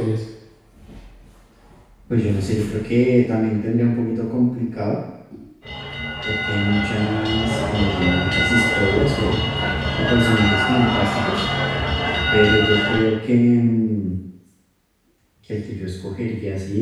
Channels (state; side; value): identical; both; correlation 1.00